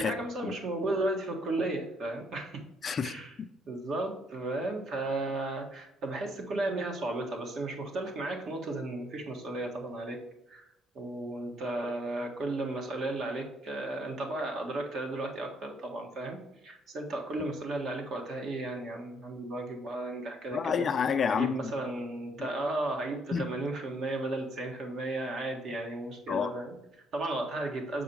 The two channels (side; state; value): both; normal; correlation 0.68